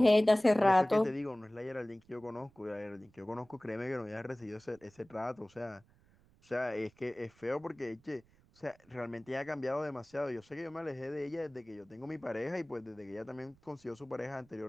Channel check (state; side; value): noise; right; rumble, 30 dB below the sound